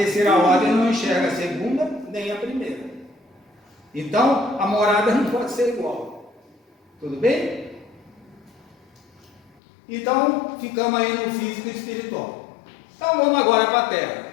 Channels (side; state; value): right; drops out; at 9.6 s